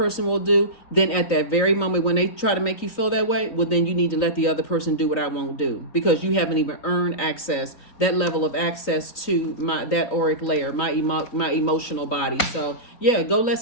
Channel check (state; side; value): late; right; 3.9 ms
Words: will do. Then at that very moment when they try to make you feel that way, well, then you need to let the other person do what I won't do. Because you haven't even earned access, that level of access to that auric layer, my emotional body. So, yeah, go let